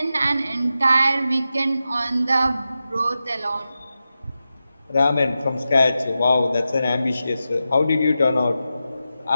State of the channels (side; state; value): both; inverted; correlation -0.91